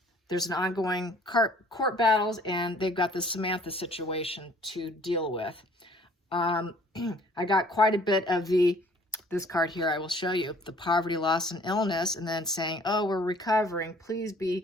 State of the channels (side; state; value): both; normal; correlation 0.56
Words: there's an ongoing court battles and they've got the Samantha situation to deal with. I got quite a bit of this card here I will show you, the poverty, loss, and illness, and then saying, oh, we're recovering. Please